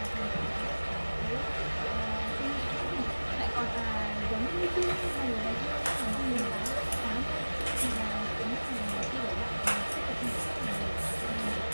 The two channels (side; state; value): both; inverted; correlation -1.00